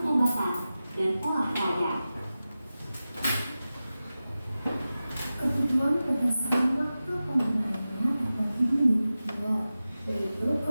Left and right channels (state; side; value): inverted; both; correlation -0.95